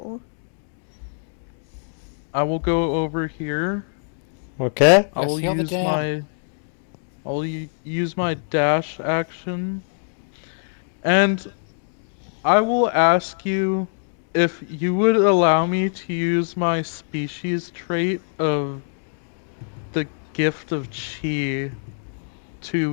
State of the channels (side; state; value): right; silent; digital silence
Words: I will go over here. okay? I will heal the use dam. use my dash action. And I will ask you if you would allow me to use my species trait of the gift of chi